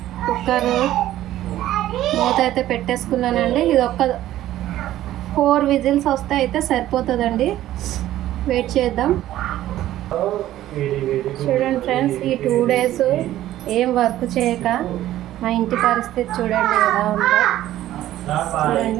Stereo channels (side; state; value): left; quieter; 13.7 dB